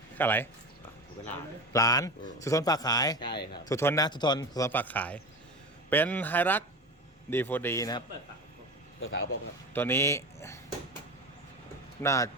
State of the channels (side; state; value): both; normal; correlation 0.27